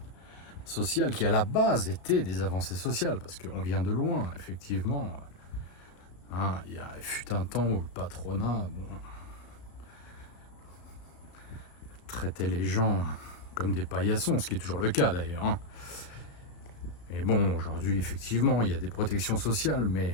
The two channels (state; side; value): late; right; 34 ms